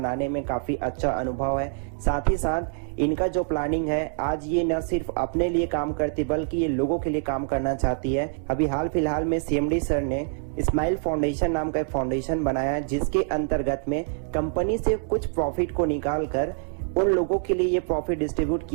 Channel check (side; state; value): left; silent; 61 dB below the other